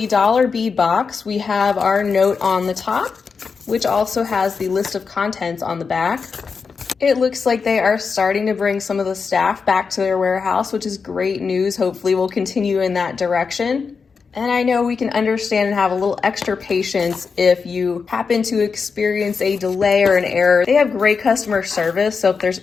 dollar bead box, we have our note on the top, which also has the list of contents on the back. It looks like they are starting to bring some of the staff back to their warehouse, which is great news. Hopefully we'll continue in that direction. And I know we can understand and have a little extra patience if you happen to experience a delay or an error. They have great customer service, so if there's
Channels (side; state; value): right; quieter; 5.3 dB